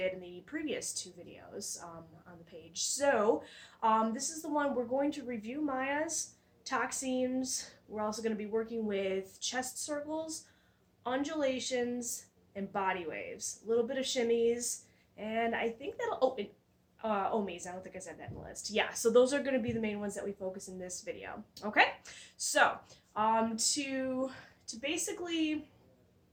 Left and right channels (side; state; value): both; identical; correlation 1.00